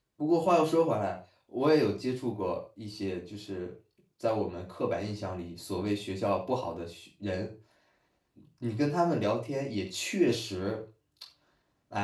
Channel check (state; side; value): identical; both; correlation 1.00